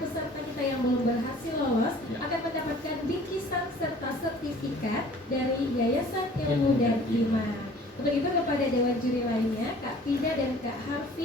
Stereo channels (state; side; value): normal; both; correlation 0.50